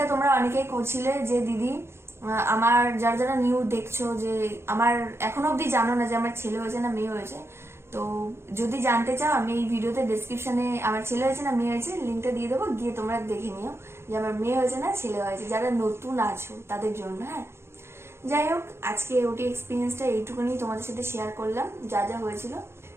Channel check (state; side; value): late; left; 0.12 ms